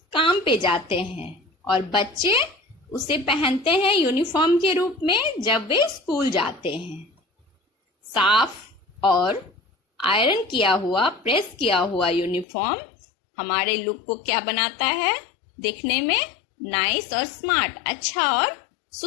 काम पे जाते हैं, और बच्चे उसे पहनते हैं यूनिफॉर्म के रूप में जब वे स्कूल जाते हैं। साफ और आयरन किया हुआ, प्रेस किया हुआ यूनिफॉर्म हमारे लुक को क्या बनाता है? दिखने में नाइस और स्मार्ट, अच्छा और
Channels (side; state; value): right; drops out; at 12.5 s